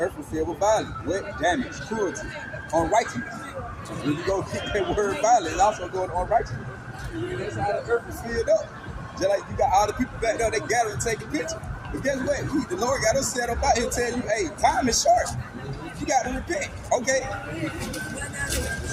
was filled with violence, wet, damage, cruelty, unrighteousness. When you go get that word violence, it's also going on unrighteousness. That's how the earth was filled up. Just like you got all the people back there, they gather and take a picture. But guess what? The Lord got us set up out here tell you, hey, time is short. You got to repent. Okay?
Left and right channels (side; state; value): both; identical; correlation 1.00